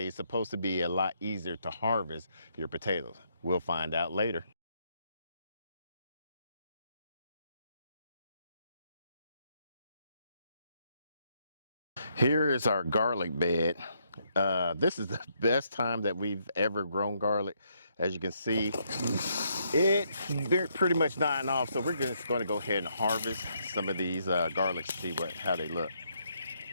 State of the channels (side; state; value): both; inverted; correlation -0.75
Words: is supposed to be a lot easier to harvest your potatoes. We'll find out later. Here is our garlic bed. This is the best time that we've ever grown garlic. As you can see, it's pretty much dying off. So we're just going to go ahead and harvest some of these garlics to see how they look.